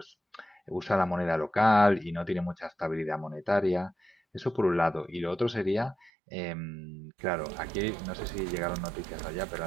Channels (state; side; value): drops out; left; at 6.1 s